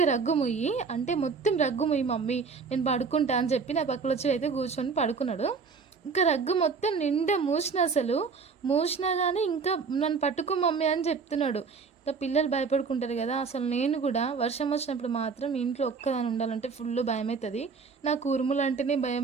రగ్గు మొయ్యి అంటే మొత్తం రగ్గు మొయ్యి మమ్మీ నేను పడుకుంటా అని చెప్పి నా పక్కన వచ్చి అయితే కూర్చొని పడుకున్నాడు. ఇంకా రగ్గు మొత్తం నిండా మూసినా కానీ ఇంకా నన్ను పట్టుకో మమ్మీ అని చెప్తున్నాడు. ఇంకా పిల్లలు భయపడుకుంటారు కదా, అసలు నేను కూడా వర్షం వచ్చినప్పుడు మాత్రం ఇంట్లో ఒక్కదాని ఉండాలంటే ఫుల్ భయం అవుతుంది. నాకు ఉరుములు అంటేనే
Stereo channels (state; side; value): quieter; left; 5.1 dB